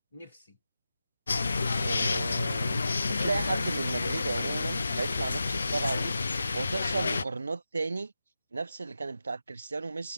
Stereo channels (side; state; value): both; inverted; correlation -0.91